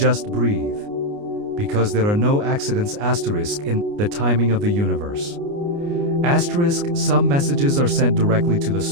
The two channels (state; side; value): late; left; 29 ms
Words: breathe. Because there are no accidents asterisk in the timing of the universe. Asterisk, some messages are sent directly to the